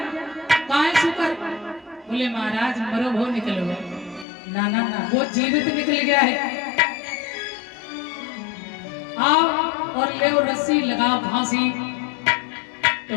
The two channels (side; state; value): right; drops out; at 4.2 s